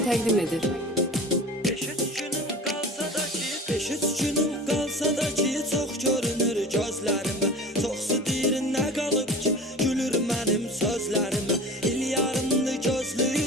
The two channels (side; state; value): both; normal; correlation 0.37